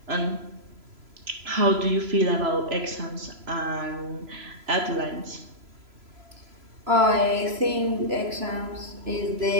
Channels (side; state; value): left; late; 3.0 ms